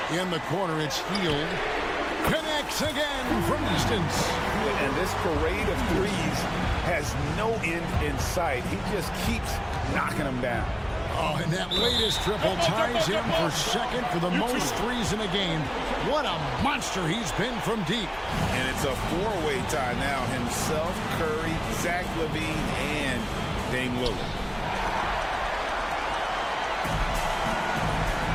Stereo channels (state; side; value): identical; both; correlation 1.00